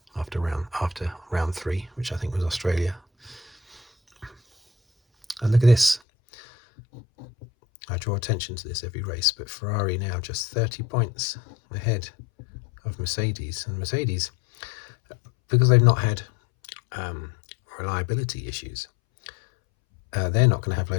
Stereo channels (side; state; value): right; drops out; at 6.0 s